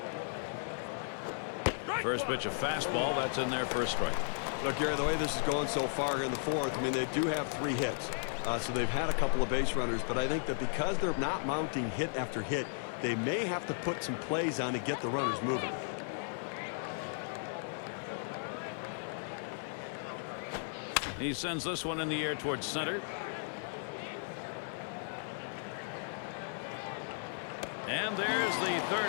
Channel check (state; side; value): silent; right; 54 dB below the other